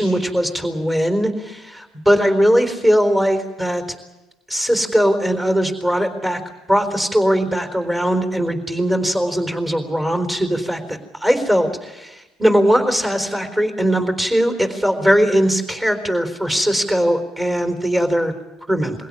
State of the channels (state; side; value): normal; both; correlation 0.94